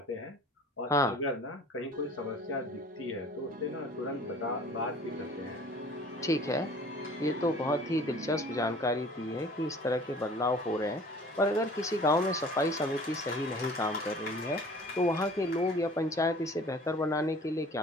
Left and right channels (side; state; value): both; normal; correlation 0.48